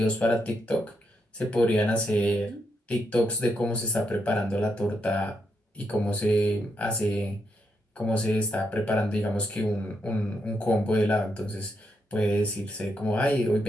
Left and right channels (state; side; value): normal; both; correlation 0.80